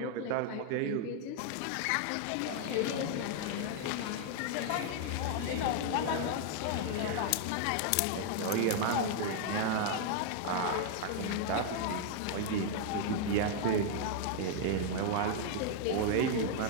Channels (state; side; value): different; both; correlation 0.00